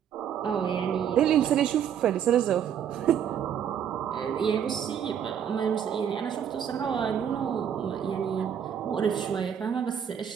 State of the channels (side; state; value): left; quieter; 8.7 dB